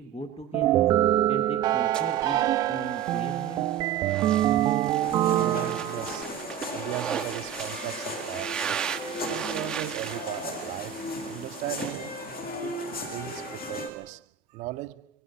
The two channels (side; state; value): left; quieter; 9.5 dB